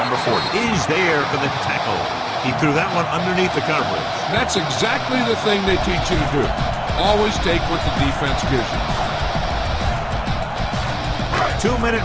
Number 40 is there for the tackle. He threw that one underneath the coverage. That's exactly the thing they teach you to do. Always take what the defense gives you. 2-minute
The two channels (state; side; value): identical; both; correlation 1.00